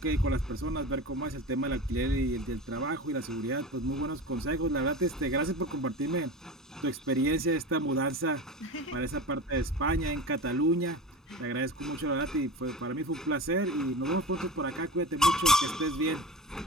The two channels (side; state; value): both; normal; correlation 0.30